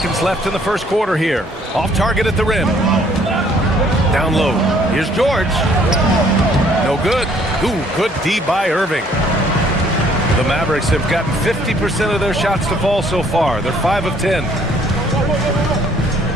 left in the first quarter here. Off target at the rim. Down low. Here's George. No good. Ooh, good D by Irving. The Mavericks have gotten 50% of their shots to fall so far. They're 5 of 10.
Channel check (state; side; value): normal; both; correlation 0.61